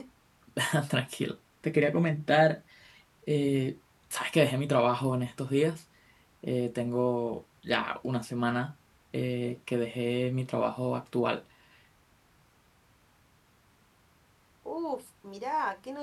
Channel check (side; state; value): both; identical; correlation 1.00